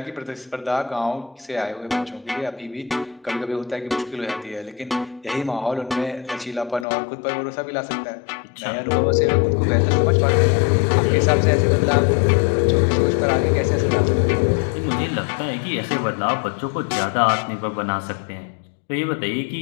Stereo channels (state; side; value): drops out; right; at 6.9 s